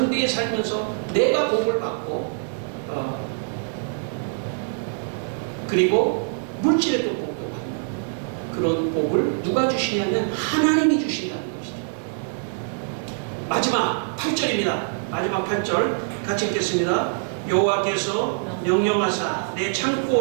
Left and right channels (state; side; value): silent; left; digital silence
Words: 살면서 내가 복을 받고 그리고 물질의 또 복도 받는 그런 복을 누가 주시냐면 하나님이 주신다는 것이죠. 마지막 8절입니다. 마지막 8절 같이 읽겠습니다. 여호와께서 명령하사 내